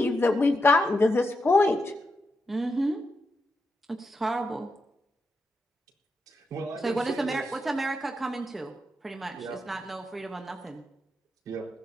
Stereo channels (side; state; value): both; normal; correlation 0.85